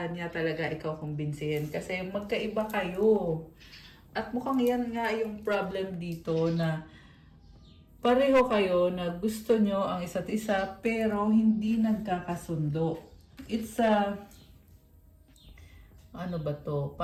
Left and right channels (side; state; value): both; identical; correlation 1.00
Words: niya talaga ikaw kumbinsihin? Kasi magkaiba kayo. At mukhang yan nga yung problem dito na pareho kayo na gusto nyo ang isa't isa pero hindi nagkakasundo. It's a... Ano ba to?